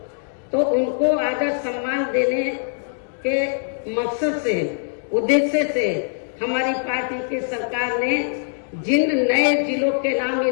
तो उनको आदर सम्मान देने के मकसद से, उद्देश्य से हमारी पार्टी की सरकार ने जिन नए जिलों के नाम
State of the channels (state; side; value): silent; right; digital silence